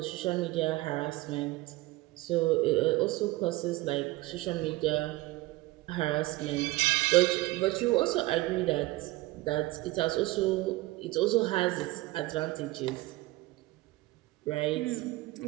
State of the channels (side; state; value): left; quieter; 19.4 dB